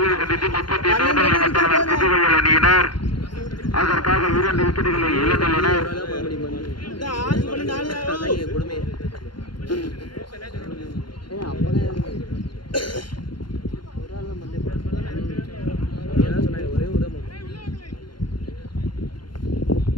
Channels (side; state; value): right; late; 0.72 ms